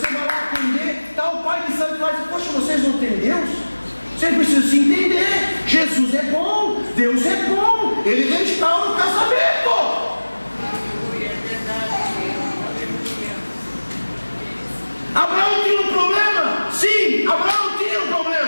vai lá atender, está o pai de santo e vai dizer: poxa, vocês não têm Deus? Vocês precisam se entender. Jesus é bom, Deus é bom, Ele restaura o casamento. Abraão tinha um problema? Sim, Abraão tinha um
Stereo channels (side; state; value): both; inverted; correlation -1.00